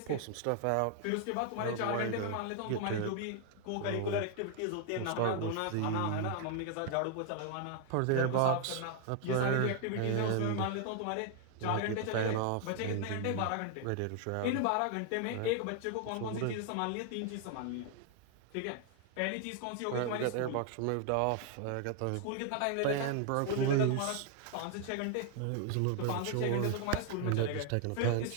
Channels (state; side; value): different; both; correlation 0.00